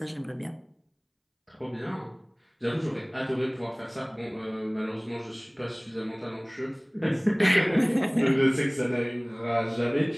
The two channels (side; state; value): both; identical; correlation 1.00